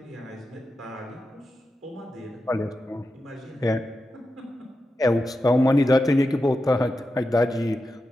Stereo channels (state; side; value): normal; both; correlation 0.90